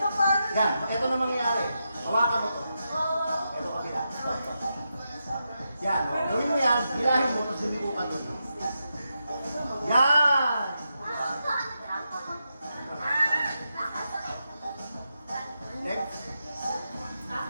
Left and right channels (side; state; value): both; inverted; correlation -0.87